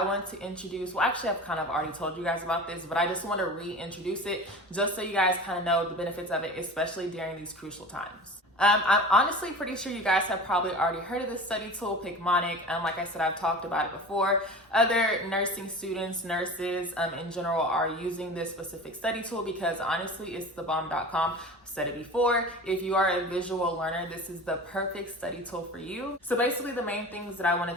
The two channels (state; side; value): normal; both; correlation 0.35